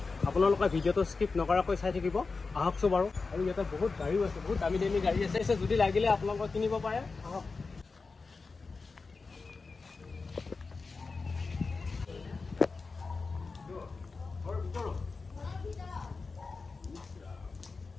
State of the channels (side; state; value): right; quieter; 4.2 dB